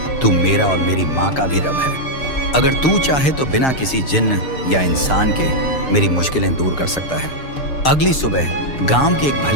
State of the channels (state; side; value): late; right; 6.6 ms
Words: तू मेरा और मेरी माँ का भी रब है। अगर तू चाहे तो बिना किसी जिन्न या इंसान के मेरी मुश्किलें दूर कर सकता है। अगली सुबह गांव के एक